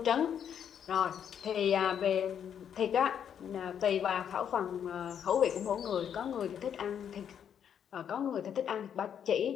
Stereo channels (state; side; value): quieter; right; 8.6 dB